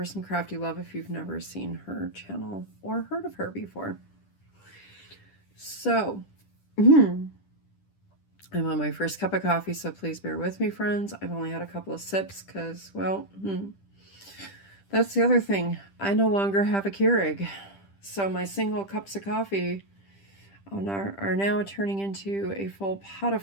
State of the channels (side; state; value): right; late; 10 ms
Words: some crafty love if you've never seen her channel or heard of her before. So, I'm on my first cup of coffee, so please bear with me, friends. I've only had a couple of sips because, well, that's the other thing. I no longer have a Keurig. So my single cups of coffee are now turning into a full pot